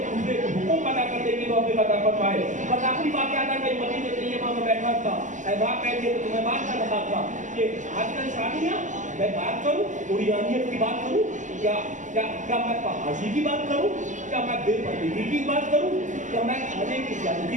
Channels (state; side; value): late; left; 0.36 ms